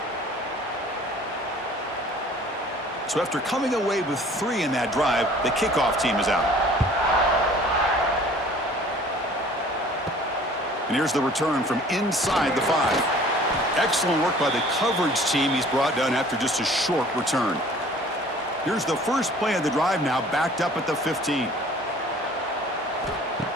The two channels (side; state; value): both; normal; correlation 0.50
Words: So after coming away with 3 in that drive, the kickoff team is out. And here's the return from inside the 5. Excellent work by the coverage team. He's brought down after just a short return. Here's the first play of the drive now, backed up at the 15.